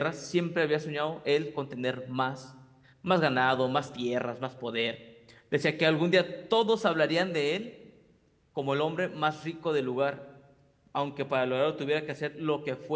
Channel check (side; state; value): both; identical; correlation 1.00